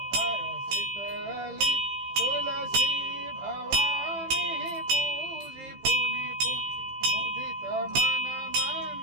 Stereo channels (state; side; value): late; left; 15 ms